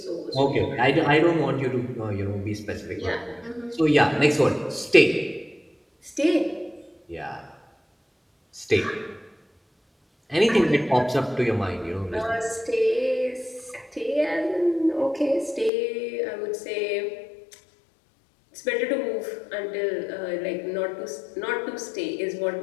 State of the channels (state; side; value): drops out; right; at 15.7 s